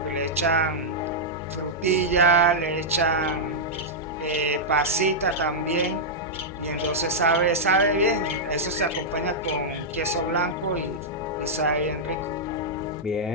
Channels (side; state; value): both; normal; correlation -0.08